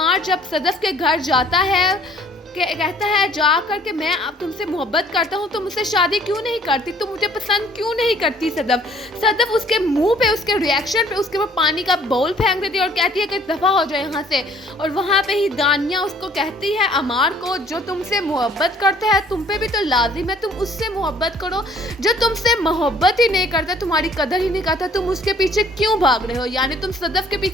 जब सदफ के घर जाता है कहता है जाकर के मैं अब तुमसे मोहब्बत करता हूँ, तुम मुझसे शादी क्यों नहीं करती, तुम मुझे पसंद क्यों नहीं करती। सदफ उसके मुंह पे, उसके रिएक्शन पे उसके ऊपर पानी का बाउल फेंक देती है और कहती है कि दफ़ा हो जाए यहाँ से। और वहाँ पे ही दानिया उसको कहती है अमार को जो तुमसे मोहब्बत करता है तुम पे भी तो लाजिम है तुम उससे मोहब्बत करो, जो तुमसे मोहब्बत ही नहीं करता, तुम्हारी कदर ही नहीं करता, तुम उसके पीछे क्यों भाग रहे हो, यानी तुम सदफ के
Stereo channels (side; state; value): both; normal; correlation 0.58